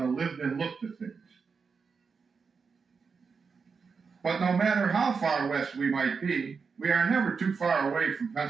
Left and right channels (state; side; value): quieter; left; 5.3 dB